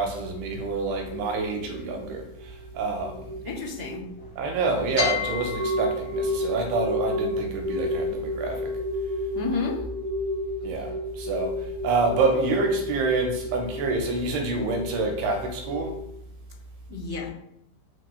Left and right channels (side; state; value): left; late; 15 ms